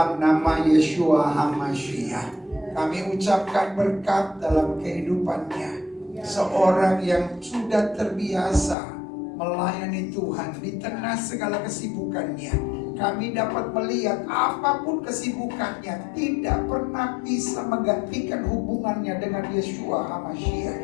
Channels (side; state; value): right; drops out; at 8.8 s